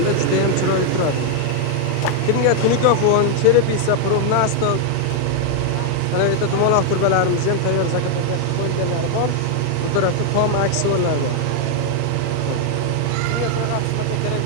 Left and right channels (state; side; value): different; both; correlation 0.00